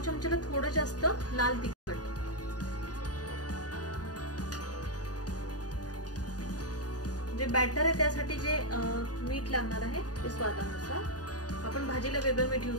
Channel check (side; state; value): right; late; 0.68 ms